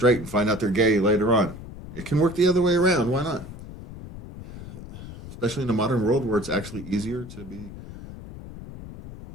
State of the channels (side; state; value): left; noise; rumble, 13 dB below the sound